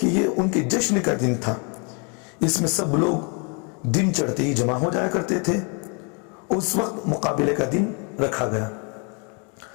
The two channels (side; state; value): right; quieter; 35.6 dB